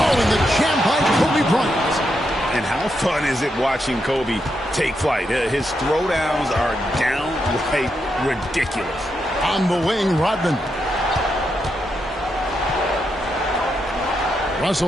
and the jam by Kobe Bryant. And how fun is it watching Kobe take flight? His throwdowns are downright ridiculous. On the wing, Rodman.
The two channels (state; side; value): normal; both; correlation 0.83